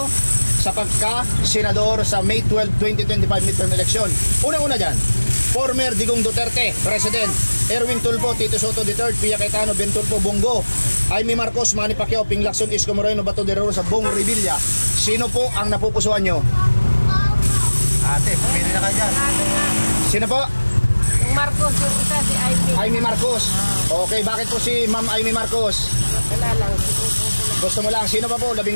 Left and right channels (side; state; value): both; inverted; correlation -1.00